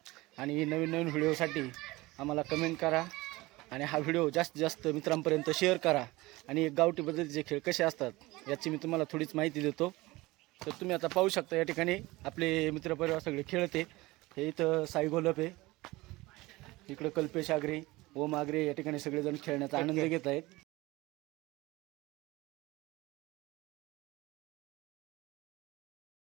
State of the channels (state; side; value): quieter; left; 20.6 dB